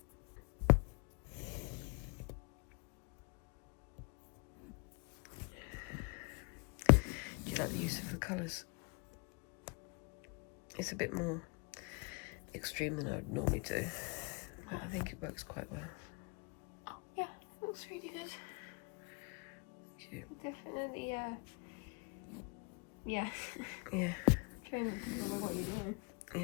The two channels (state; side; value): quieter; right; 32.5 dB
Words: Do you like the use of the colours? It's a bit more extreme than I would normally do, but I think it works quite well. Oh, yeah, looks really good. Thank you. Definitely, yeah. Yeah. Try can remember what you're doing.